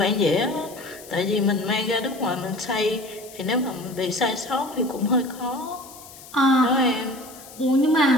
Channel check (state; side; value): noise; left; hiss, 18 dB below the sound